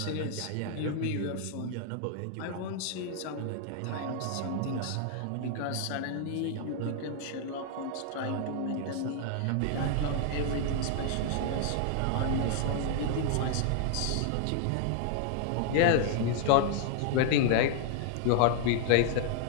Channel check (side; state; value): both; different; correlation 0.00